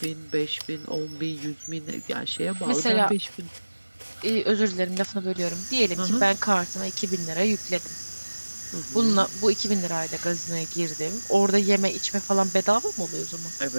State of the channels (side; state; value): both; inverted; correlation -1.00